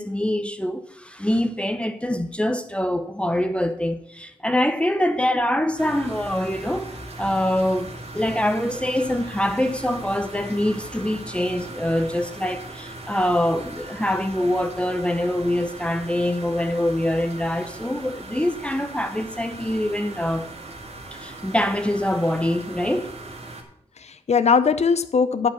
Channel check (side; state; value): both; normal; correlation 0.82